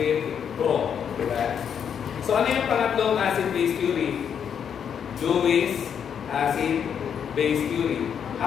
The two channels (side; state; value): right; quieter; 7.9 dB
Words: pro. Diba? So, ano yung pangatlong acid-base theory? Lewis acid-base theory.